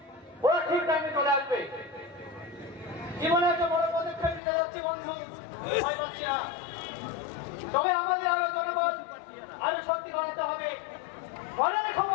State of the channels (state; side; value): drops out; right; at 4.4 s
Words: ওরা ঠিক টাইমে চলে আসবে। জীবনে একটা বড় পদক্ষেপ নিতে যাচ্ছি বন্ধু, ভয় পাচ্ছি না। তবে আমাদের আরো জনবল আরো শক্তি বাড়াতে হবে। মনে রেখো